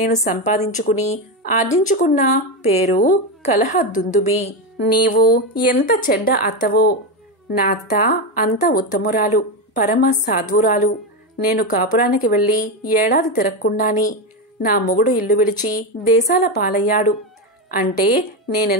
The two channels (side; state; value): both; normal; correlation 0.12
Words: సంపాదించుకుని ఆర్జించుకున్న పేరు కలహ దుందుబి. నీవు ఎంత చెడ్డ అత్తవో! నా అత్త అంత ఉత్తమురాలు, పరమ సాధ్వురాలు. నేను కాపురానికి వెళ్ళి ఏడాది తిరగకుండాని నా మొగుడు ఇల్లు విడిచి దేశాల పాలయ్యాడు. అంటే